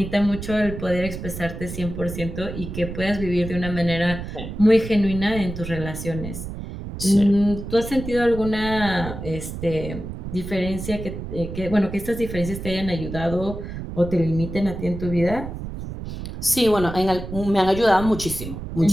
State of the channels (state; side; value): noise; right; rumble, 8 dB below the sound